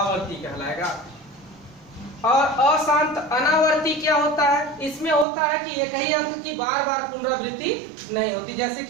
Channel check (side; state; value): left; drops out; at 5.2 s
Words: कहलाएगा। और अशांत अनावर्ती क्या होता है, इसमें होता है कि एक ही अंक की बार बार पुनरावृत्ति नहीं होती। जैसे